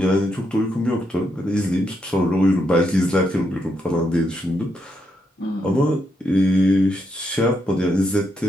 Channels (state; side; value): normal; both; correlation 0.79